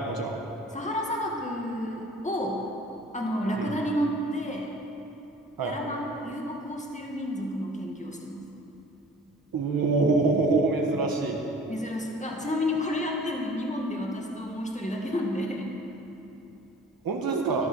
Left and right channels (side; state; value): both; normal; correlation 0.47